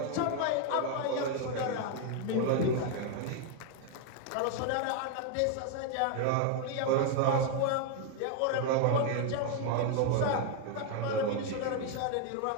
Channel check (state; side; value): different; both; correlation 0.00